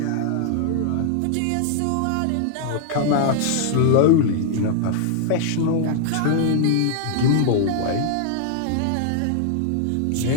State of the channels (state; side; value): different; both; correlation -0.01